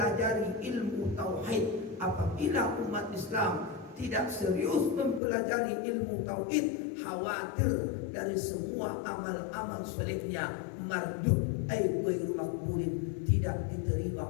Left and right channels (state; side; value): drops out; right; at 5.2 s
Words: mempelajari ilmu tauhid. Apabila umat Islam tidak serius mempelajari ilmu tauhid, khawatir dari semua amal-amal solehnya mardud ghairu maqbulin, tidak diterima